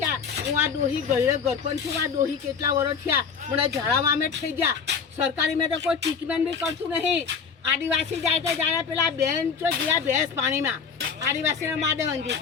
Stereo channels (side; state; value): right; quieter; 6.1 dB